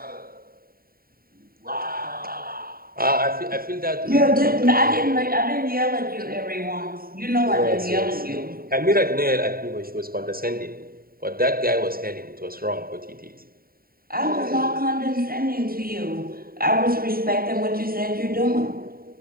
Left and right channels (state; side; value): late; left; 0.43 ms